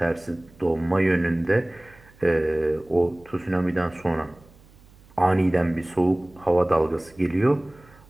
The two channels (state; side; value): noise; right; hum, 26 dB below the sound